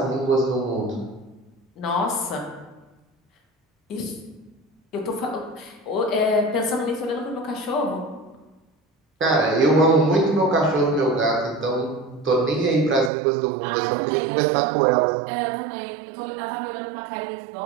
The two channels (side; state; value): left; drops out; at 13.1 s